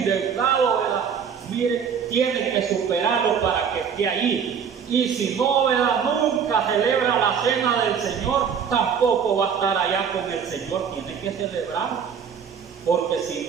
¿verdad? Mire, tiene que superarlo para que esté allí. Y si no, ¿verdad? Nunca celebra la cena del Señor, tampoco va a estar allá con el Señor. Tiene que celebrarlo. Porque si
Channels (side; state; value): left; quieter; 7.1 dB